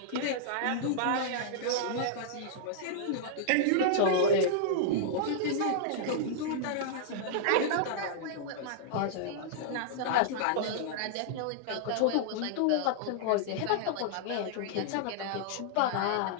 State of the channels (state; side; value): different; both; correlation -0.01